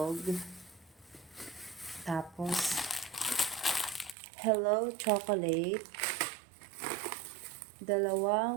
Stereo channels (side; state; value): left; drops out; at 4.2 s